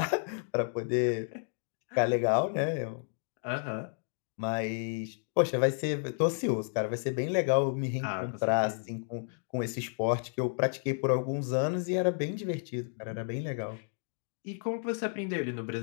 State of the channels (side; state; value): right; silent; 57 dB below the other